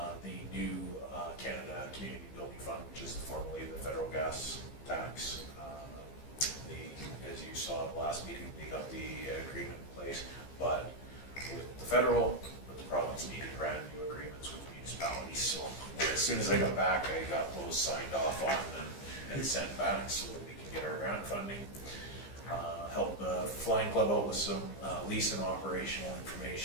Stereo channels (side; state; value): right; late; 15 ms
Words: The new Canada Community Building Fund, which is formerly the federal gas tax. As you saw at the last meeting, they got the agreement in place, but with the federal, with the province needed brand new agreements with municipalities. So as soon as I got back, I got those signed off on and sent back so that we can get our grant funding. Help the Flying Club out with some lease and operational